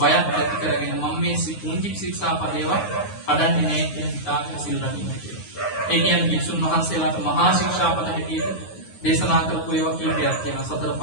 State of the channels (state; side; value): late; right; 9.5 ms